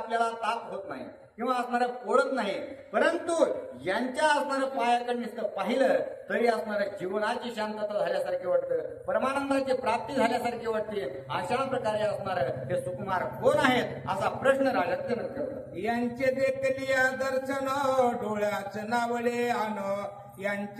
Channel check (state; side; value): identical; both; correlation 1.00